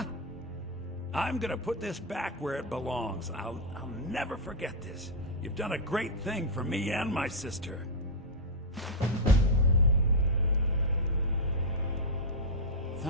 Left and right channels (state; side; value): normal; both; correlation -0.03